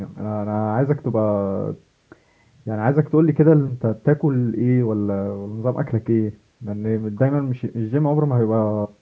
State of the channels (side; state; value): both; identical; correlation 1.00